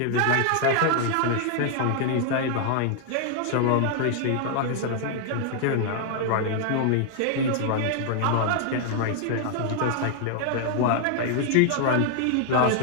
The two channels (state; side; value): different; both; correlation 0.00